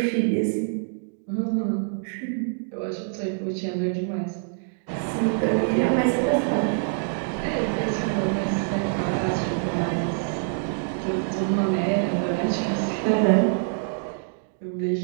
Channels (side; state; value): left; silent; digital silence